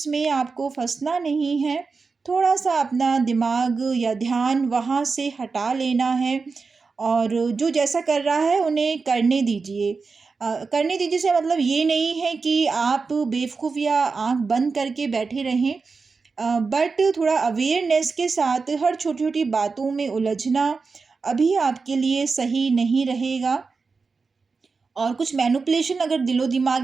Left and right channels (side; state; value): left; quieter; 4.6 dB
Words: में आपको फँसना नहीं है, थोड़ा-सा अपना दिमाग या ध्यान वहाँ से हटा लेना है और जो जैसा कर रहा है उन्हें करने दीजिए। करने दीजिए से मतलब ये नहीं है कि आप बेवकूफ़ या आँख बंद करके बैठे रहें। बट थोड़ा अवेयरनेस के साथ हर छोटी-छोटी बातों में उलझना अभी आपके लिए सही नहीं रहेगा। और कुछ मैनिपुलेशन अगर दिलो-दिमाग